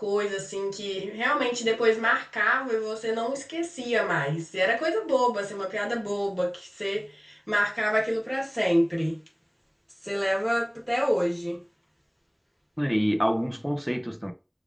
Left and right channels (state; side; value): identical; both; correlation 1.00